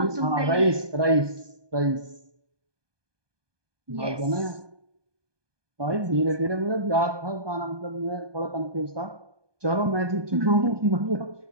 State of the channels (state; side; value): late; left; 1.2 ms